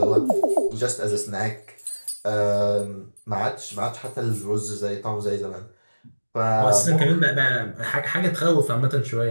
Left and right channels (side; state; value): both; inverted; correlation -1.00